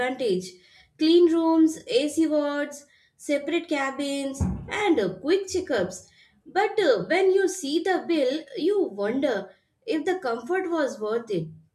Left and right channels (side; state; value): both; identical; correlation 1.00